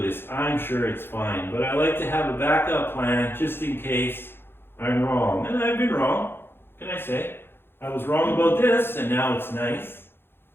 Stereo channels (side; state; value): right; late; 0.11 ms